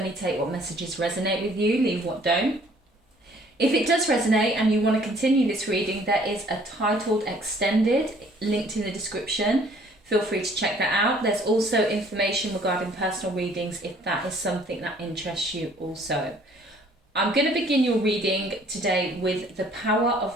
take what messages resonate with you, leave what don't. If it does resonate and you want to continue this reading, there is a titled extended linked in the description. Feel free to check that out. There's also information regarding personal readings if that is something that interests you also. I'm going to begin your reading today with the Power of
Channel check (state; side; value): normal; both; correlation 0.58